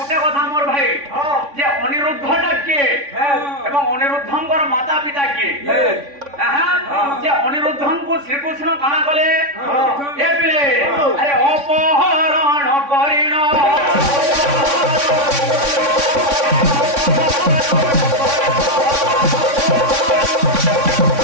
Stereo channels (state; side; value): late; left; 3.6 ms